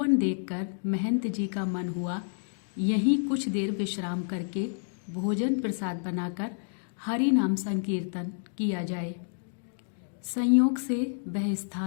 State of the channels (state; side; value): silent; right; digital silence